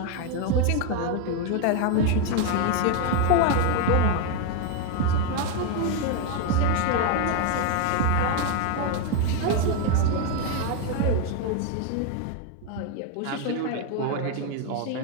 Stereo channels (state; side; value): different; both; correlation 0.01